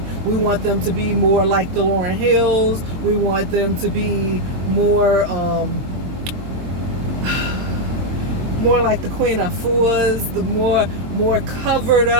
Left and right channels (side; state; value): left; late; 22 ms